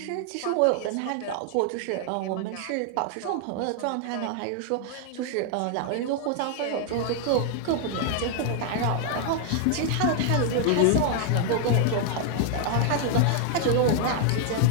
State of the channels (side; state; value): both; different; correlation 0.00